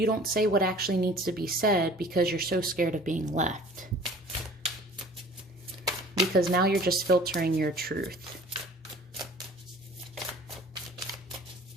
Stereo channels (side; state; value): both; normal; correlation 0.47